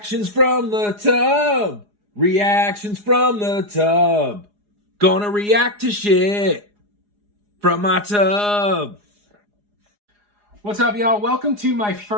from the tub. Reactions from the tub. Gonna react to shit from my tub. What's up, y'all? Welcome to my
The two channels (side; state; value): left; late; 4.8 ms